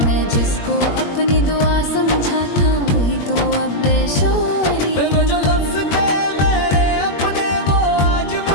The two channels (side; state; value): right; late; 21 ms